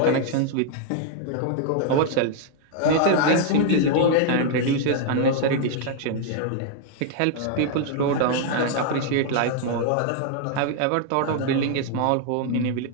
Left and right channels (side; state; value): both; different; correlation 0.00